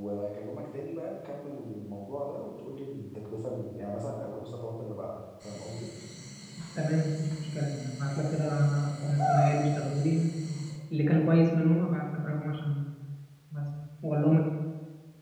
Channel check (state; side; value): identical; both; correlation 1.00